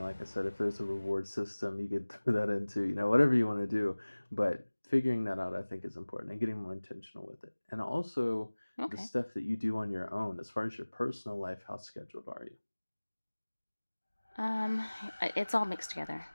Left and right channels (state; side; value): inverted; both; correlation -1.00